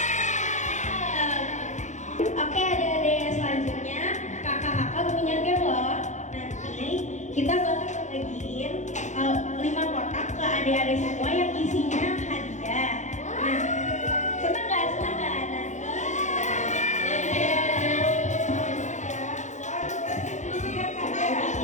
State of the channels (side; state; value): right; late; 0.35 ms